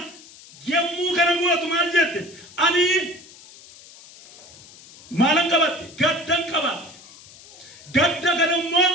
yemmuu kana gootu maal jette? Ani maalan qabatte? Gaddan qabatte. Gadda kana immoo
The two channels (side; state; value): left; noise; hiss, 21 dB below the sound